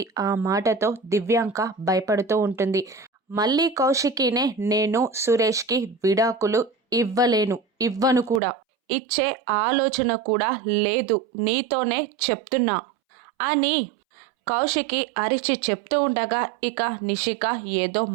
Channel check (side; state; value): left; drops out; at 8.4 s